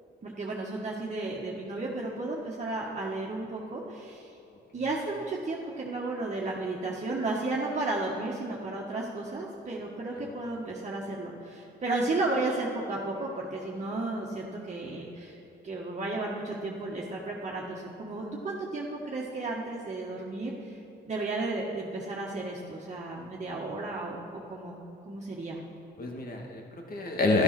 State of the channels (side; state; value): both; normal; correlation 0.50